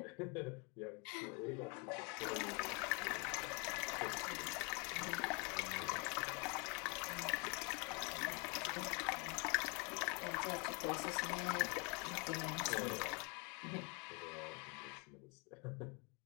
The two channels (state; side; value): quieter; right; 30.8 dB